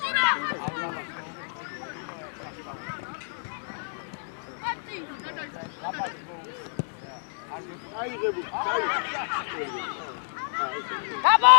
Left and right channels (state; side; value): silent; right; digital silence